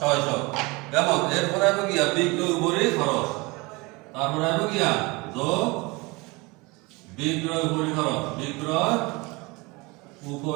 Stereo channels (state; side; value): quieter; left; 25.2 dB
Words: কেমন? এরপরে আসবে কি বিক্রয় উপরি খরচ। তারপরে আসবে কি যোগ বিক্রয় উপরি খরচ। বিক্রয়